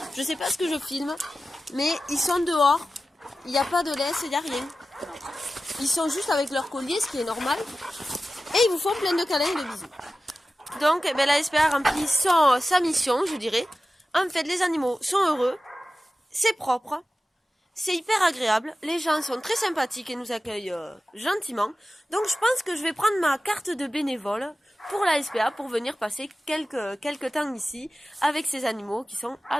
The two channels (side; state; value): both; normal; correlation 0.94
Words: je sais pas ce que je filme, mais ils sont dehors. Il n'y a pas de laisse, il n'y a rien. Ils sont juste avec leur collier, ce qui est normal. Et ils vous font plein de câlins et de bisous. Donc la SPA remplit sa mission, je dirais. En fait, les animaux sont heureux, c'est propre. C'est hyper agréable, les gens sont très sympathiques et nous accueillent gentiment. Donc je pense que je vais prendre ma carte de bénévole pour la SPA pour venir passer quelques temps ici avec ces animaux qui sont